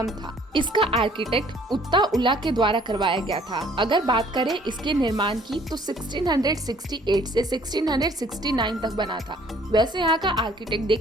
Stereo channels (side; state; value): both; normal; correlation 0.58